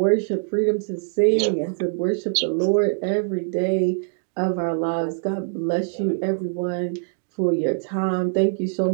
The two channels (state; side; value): silent; left; digital silence